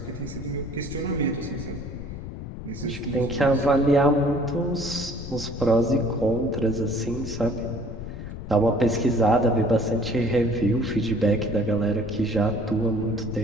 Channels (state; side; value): noise; left; rumble, 9 dB below the sound